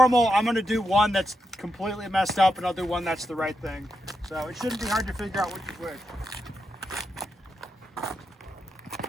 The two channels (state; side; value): normal; both; correlation 0.85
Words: I'm going to do one that's completely messed up, and I'll do one that's the right thing. So it shouldn't be hard to figure out which is which.